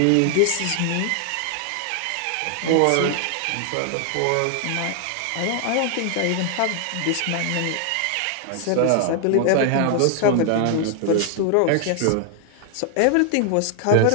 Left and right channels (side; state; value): both; different; correlation 0.00